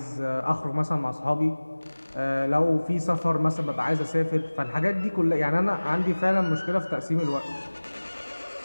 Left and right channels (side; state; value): both; inverted; correlation -1.00